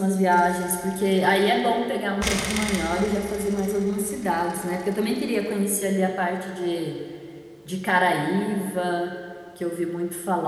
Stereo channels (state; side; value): identical; both; correlation 1.00